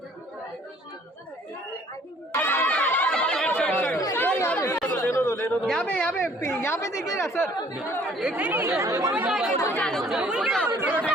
यहाँ पे देखिएगा सर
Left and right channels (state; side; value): normal; both; correlation 0.57